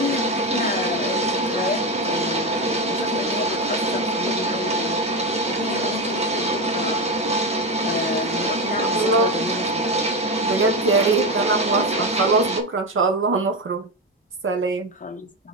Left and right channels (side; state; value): both; normal; correlation 0.14